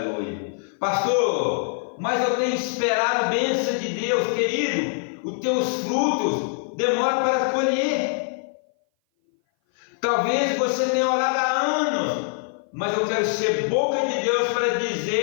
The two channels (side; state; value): right; silent; 58 dB below the other